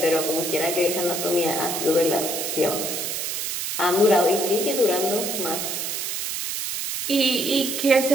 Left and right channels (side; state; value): right; noise; hiss, 3 dB below the sound